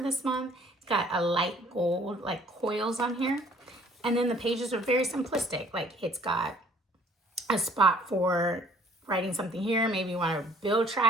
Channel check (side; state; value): both; normal; correlation 0.57